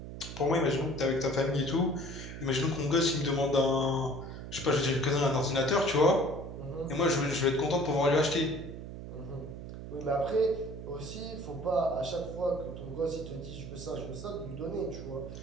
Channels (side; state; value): right; noise; hum, 10 dB below the sound